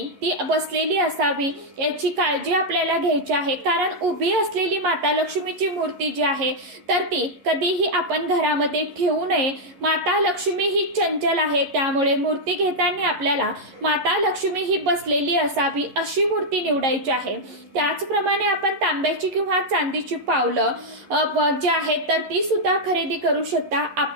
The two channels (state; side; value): late; left; 11 ms